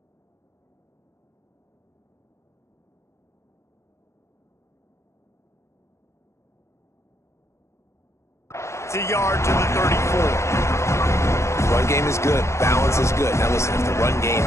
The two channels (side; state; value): right; late; 0.14 ms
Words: It's a yard to the 34. Run game is good. Balance is good. Now listen, if the run game